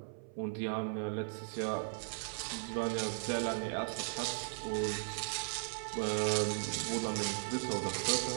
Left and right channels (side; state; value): left; silent; 53 dB below the other